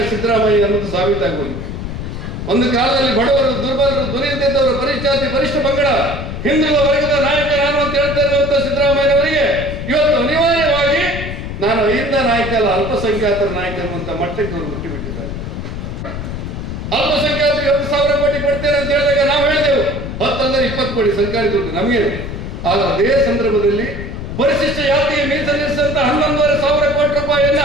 ಸಿದ್ದರಾಮಯ್ಯ ಅನ್ನೋದು ಸಾಬೀತಾಗುವುದು. ಒಂದು ಕಾಲದಲ್ಲಿ ಬಡವರು, ದುರ್ಬಲರು, ದುರಿತಿದ್ದವರು, ಪರಿಶಾತಿ, ಪರಿಷ್ಠ ಪಂಗಡ, ಹಿಂದುಳಿದ ವರ್ಗದ ನಾಯಕ ನಾನು ಅಂತ ಹೇಳ್ತಾ ಇರುವಂತ ಸಿದ್ದರಾಮಯ್ಯನವರಿಗೆ ಇವತ್ತು ಅನಿವಾರ್ಯವಾಗಿ ನಾನು ಅಹಿಂದ ನಾಯಕ ಅಲ್ಲ, ಅಲ್ಪಸಂಖ್ಯಾತರ ನಾಯಕ ಅನ್ನುವಂತ ಮಟ್ಟಕ್ಕೆ ಅವರು ಮುಟ್ಟಿಬಿಟ್ಟಿದ್ದಾರೆ. ಅಲ್ಪಸಂಖ್ಯಾತರಿಗೆ 10,000 ಕೋಟಿ ಕೊಡ್ತೇನೆ ಅಂತ ಹೇಳಿದಾಗ ನಾವು ಹೇಳಿದೆವು 10 ಅಂದರೆ 20 ಕೋಟಿ ಸರ್ಕಾರಿ ದುಡ್ಡು ನಮಗೆ. ಆಗ ಅದೇ ಸಂದರ್ಭದಲ್ಲಿ ಪರಿಶಿಷ್ಟ ಜಾತಿಗೆ ಮೀಸಲಿರಿಸಿದಂತ 11,500 ಕೋಟಿ ರೂಪಾಯಿಯನ್ನ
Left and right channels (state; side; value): noise; left; rumble, 7 dB below the sound